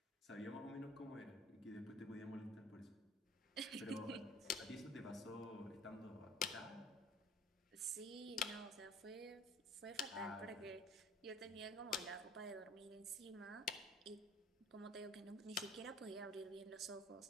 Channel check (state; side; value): normal; both; correlation 0.50